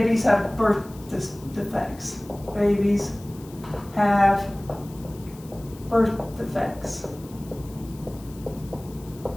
have birth defects. Babies have birth defects.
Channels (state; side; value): noise; left; hiss, 22 dB below the sound